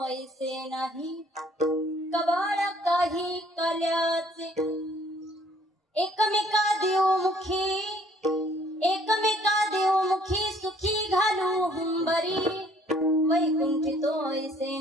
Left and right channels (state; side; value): normal; both; correlation 0.59